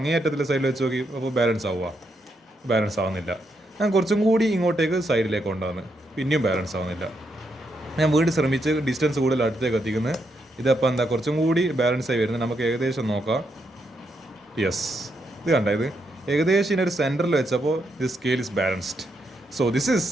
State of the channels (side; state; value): both; normal; correlation 0.80